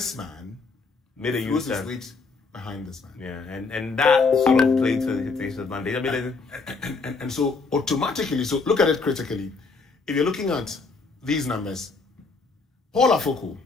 man, made a his weight behind this man. Yeah, and that sort of played to his advantage. I mean, and so automatically, so look at it critically. If you're looking at these numbers, Paul Afoko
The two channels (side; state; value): right; quieter; 4.3 dB